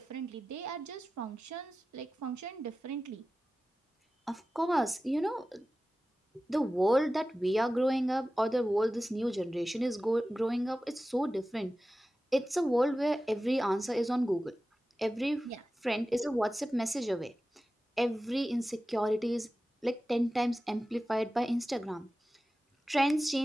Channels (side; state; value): both; normal; correlation 0.95